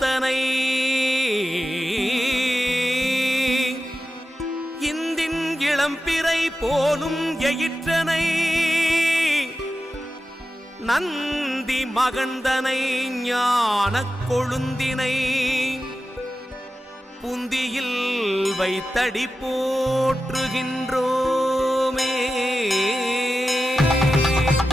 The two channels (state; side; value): normal; both; correlation 0.92